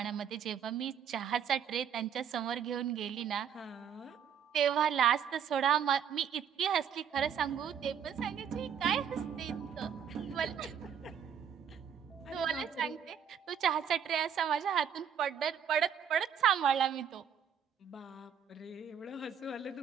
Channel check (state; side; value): quieter; left; 8.0 dB